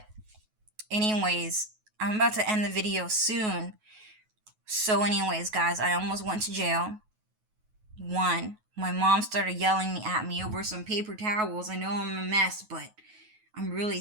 anyways, I'm about to end the video soon. So anyways, guys, I almost went to jail. One, my mom started yelling at me over some paper towels. I know I'm a mess, but I'm really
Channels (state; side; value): late; left; 9.3 ms